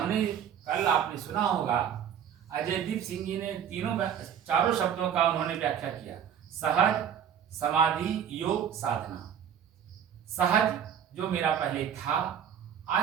कल आपने सुना होगा, अजयदीप सिंह जी ने चारों शब्दों का उन्होंने व्याख्या किया। सहज, समाधि, योग, साधना। सहज जो मेरा पहले था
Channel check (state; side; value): quieter; left; 8.7 dB